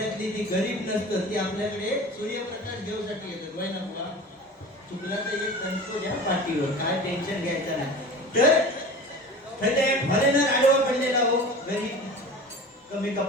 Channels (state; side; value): normal; both; correlation 0.36